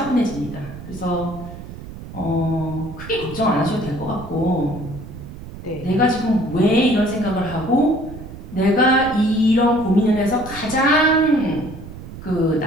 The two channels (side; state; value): right; noise; rumble, 13 dB below the sound